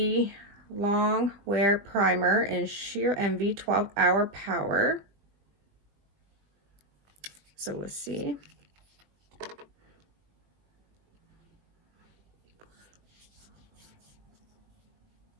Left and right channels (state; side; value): late; left; 20 ms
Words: Long Wear Primer in Sheer Envy 12-Hour Power. So we'll see.